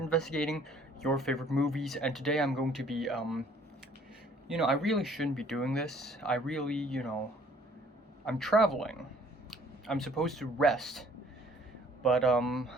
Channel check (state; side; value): normal; both; correlation 0.58